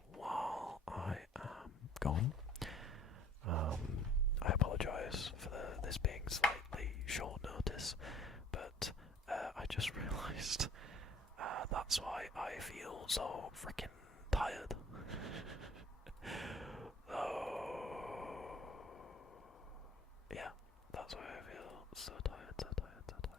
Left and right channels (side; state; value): both; normal; correlation 0.53